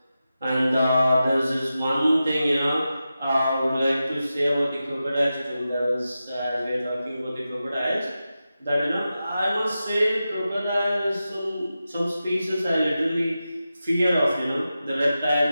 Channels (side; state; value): both; inverted; correlation -0.92